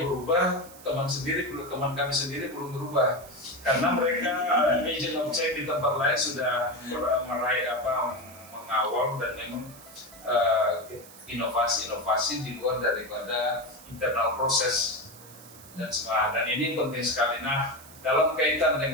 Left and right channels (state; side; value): noise; right; hiss, 19 dB below the sound